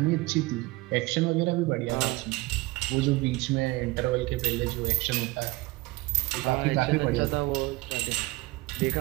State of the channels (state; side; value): quieter; left; 21.4 dB